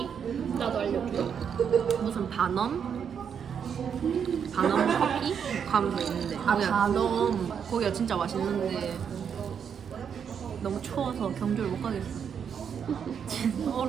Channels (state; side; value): quieter; left; 7.5 dB